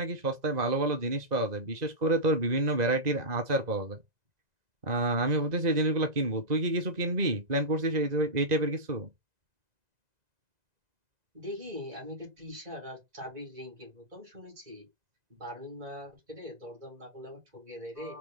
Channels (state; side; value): late; left; 2.0 ms